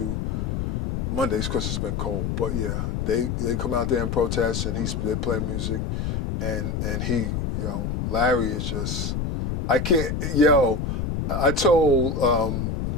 Mondays because it's been cold. But yeah, they come out there and protest, and they play music, and Larry is just, I told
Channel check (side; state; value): left; noise; rumble, 2 dB below the sound